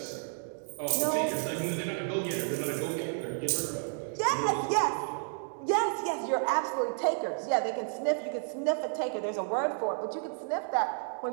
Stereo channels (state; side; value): silent; left; 57 dB below the other